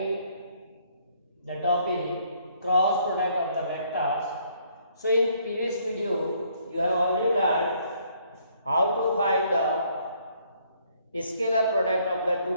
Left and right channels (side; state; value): both; inverted; correlation -0.66